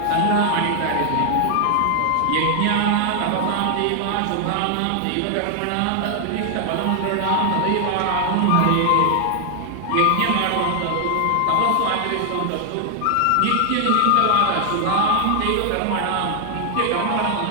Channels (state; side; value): different; both; correlation 0.00